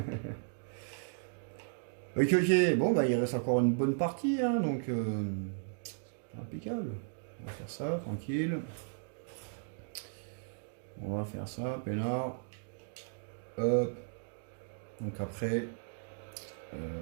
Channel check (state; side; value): silent; left; digital silence